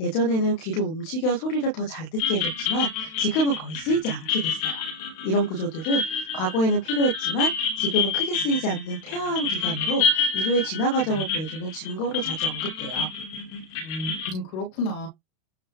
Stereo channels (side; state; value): right; late; 32 ms